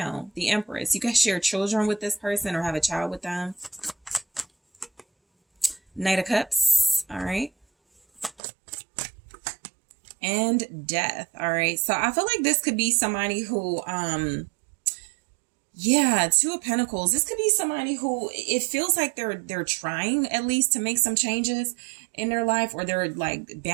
The Empress. You guys share children with this person or have a child with them. Knight of Cups. All right. And Death. All right. So I feel like this could be somebody who, yeah, 2 of Pentacles. This could be somebody who it feels like they're trying at least to make some changes in their life, or they're like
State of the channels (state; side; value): drops out; left; at 8.3 s